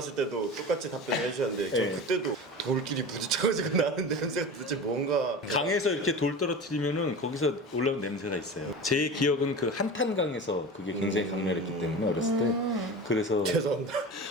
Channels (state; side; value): normal; both; correlation 0.31